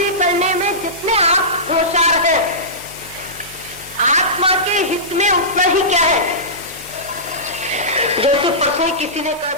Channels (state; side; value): normal; both; correlation -0.19